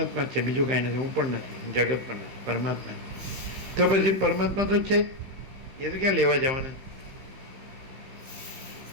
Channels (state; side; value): late; left; 16 ms